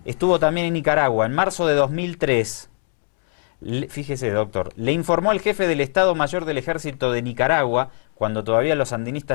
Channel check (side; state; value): right; silent; 65 dB below the other